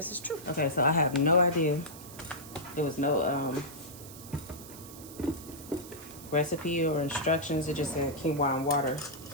is true. Okay, so I have no idea. There was no recipe or instructions. It just said quinoa and water.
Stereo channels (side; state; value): right; noise; hiss, 16 dB below the sound